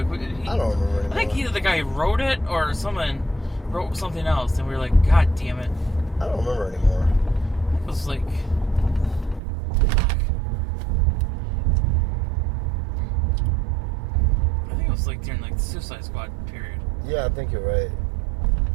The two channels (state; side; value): drops out; left; at 9.4 s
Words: I don't remember anymore. I think either the guy who wrote it or someone wrote something else, and we were like, God damn it. I don't remember anymore. It was like. I think it was like during like the Suicide Squad period. Yeah, I think you're right.